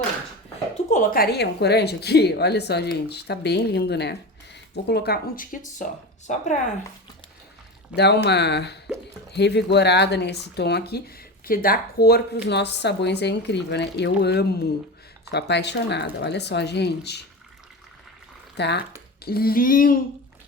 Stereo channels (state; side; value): normal; both; correlation 0.26